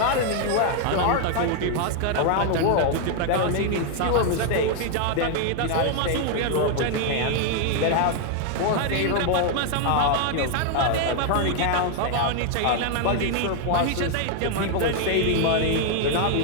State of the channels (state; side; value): different; both; correlation 0.00